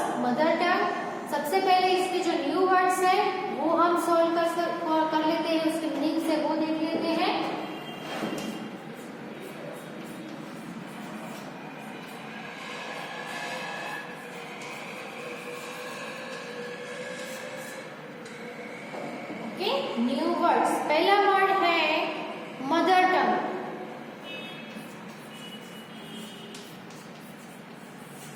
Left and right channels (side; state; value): both; identical; correlation 1.00